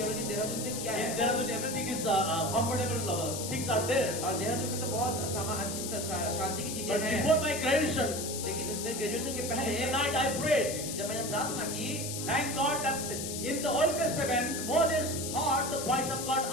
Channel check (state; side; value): noise; left; hiss, 5 dB below the sound